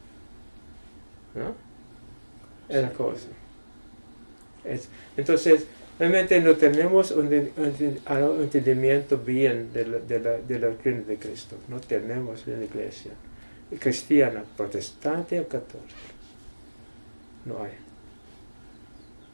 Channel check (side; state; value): both; inverted; correlation -1.00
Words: ¿No? Es la cosa. Entonces, realmente no tenemos un entendimiento bien de la doctrina de Cristo. No tenemos en la iglesia cristiana, protestante o católica. No hay.